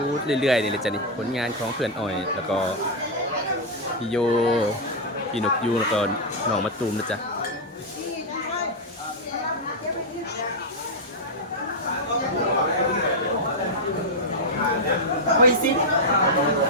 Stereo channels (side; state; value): both; normal; correlation -0.01